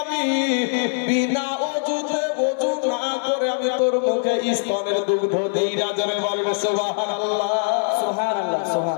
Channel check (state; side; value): silent; right; 64 dB below the other